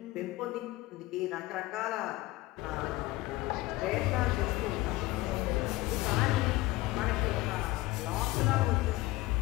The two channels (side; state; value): right; quieter; 18.8 dB